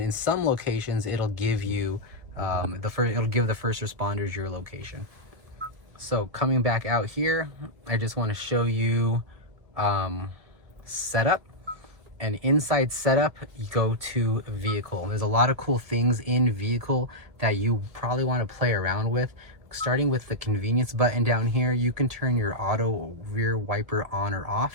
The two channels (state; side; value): late; left; 1.7 ms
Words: some locations, it'll give you it'll give the first responders your location. So coming back out here, I just want to show you setup. And inside setup, you go to vehicle. There's a lot of cool things in vehicle that you probably want to play around with. Starting with the convenience button down here, you can turn your auto rear wiper on or